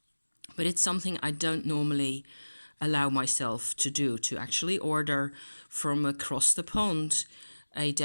it's something I don't normally allow myself to do, to actually order from across the pond a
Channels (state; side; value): inverted; both; correlation -1.00